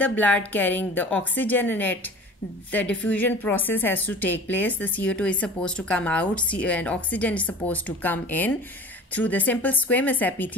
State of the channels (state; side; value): normal; both; correlation 0.41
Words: blood carrying the oxygen in it, the diffusion process has to take place. The CO2 is supposed to come out and oxygen is supposed to come in through the simple squamous